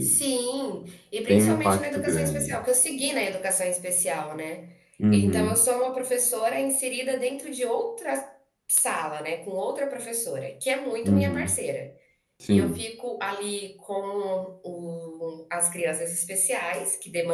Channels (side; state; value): both; identical; correlation 1.00